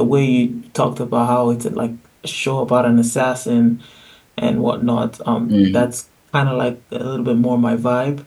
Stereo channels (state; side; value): identical; both; correlation 1.00